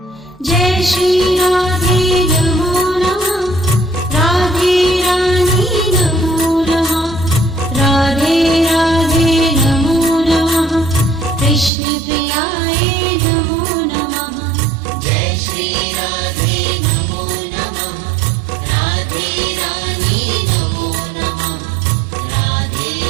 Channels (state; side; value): drops out; left; at 11.7 s